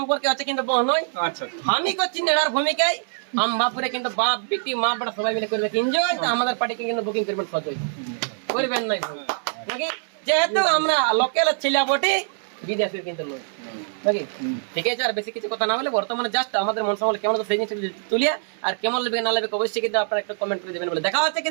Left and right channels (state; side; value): silent; left; 63 dB below the other